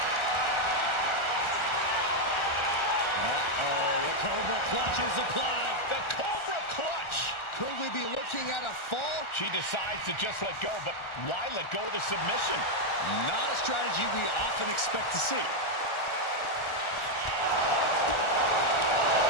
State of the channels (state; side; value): late; right; 1.4 ms